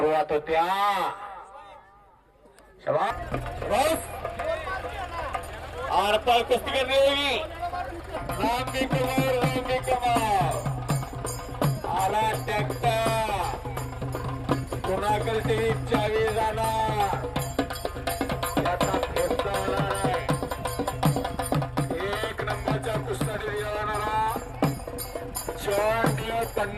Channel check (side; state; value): both; identical; correlation 1.00